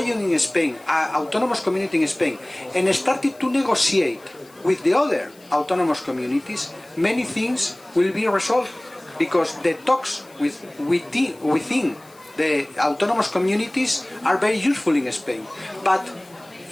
Spain, an autonomous community in Spain, and started to negotiate with the other autonomous communities, many things will be resolved because the talks within the autonomous communities are very useful in Spain. But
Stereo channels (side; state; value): left; noise; hiss, 27 dB below the sound